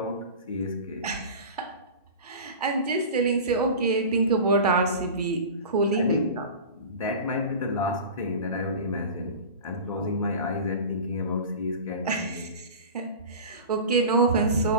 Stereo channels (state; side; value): inverted; both; correlation -0.33